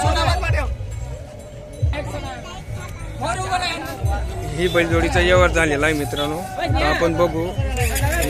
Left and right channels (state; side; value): identical; both; correlation 1.00